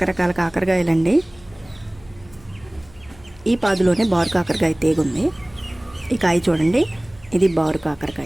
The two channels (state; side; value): noise; left; hum, 25 dB below the sound